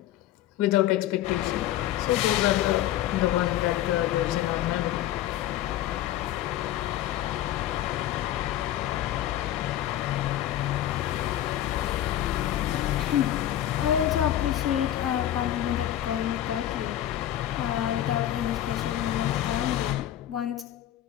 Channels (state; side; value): quieter; right; 12.7 dB